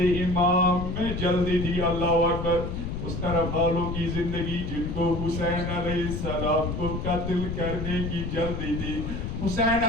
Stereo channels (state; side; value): noise; left; rumble, 5 dB below the sound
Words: میں جلدی تھی. اللہ اکبر. اس طرف والوں کی زندگی جن کو حسین علیہ السلام کو قتل کرنے کی جلدی تھی. حسین